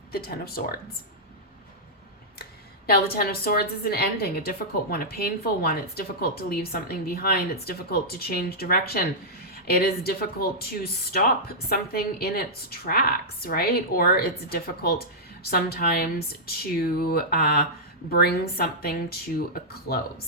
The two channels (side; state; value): both; normal; correlation -0.10